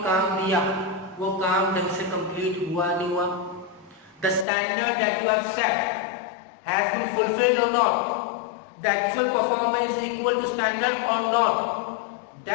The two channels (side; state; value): right; drops out; at 4.5 s